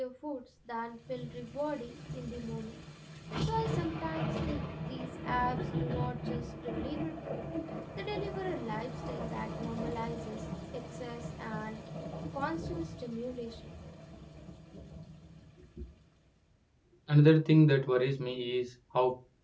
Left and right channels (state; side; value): identical; both; correlation 1.00